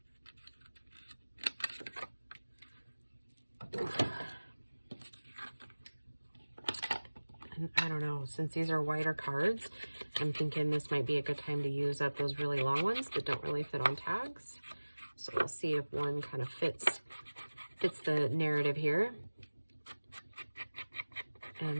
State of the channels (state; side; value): inverted; both; correlation -1.00